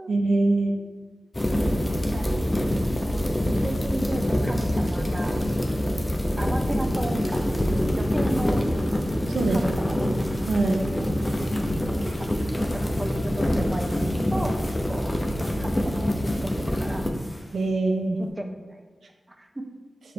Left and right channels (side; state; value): both; normal; correlation 0.96